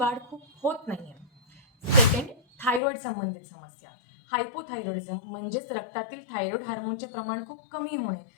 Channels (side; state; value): right; drops out; at 2.8 s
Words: खूप होत नाहीये. सेकंड, थायरॉइड संबंधित समस्या. हायपोथायरॉइडिझम म्हणजेच रक्तातील थायरॉइड हार्मोनचे प्रमाण खूप कमी होणे